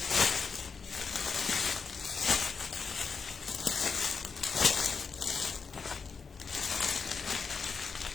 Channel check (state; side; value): quieter; right; 5.4 dB